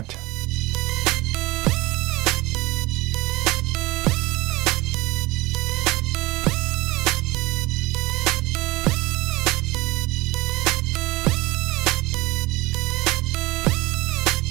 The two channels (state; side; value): quieter; left; 21.0 dB